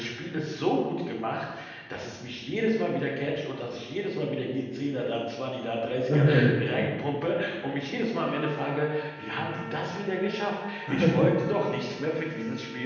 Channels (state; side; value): identical; both; correlation 1.00